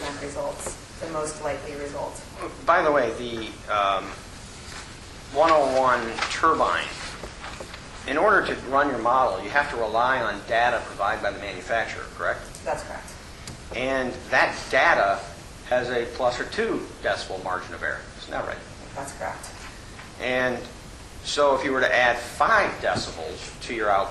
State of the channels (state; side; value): identical; both; correlation 1.00